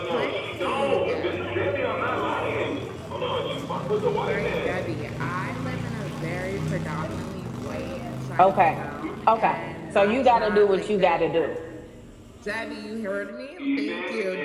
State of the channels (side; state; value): both; identical; correlation 1.00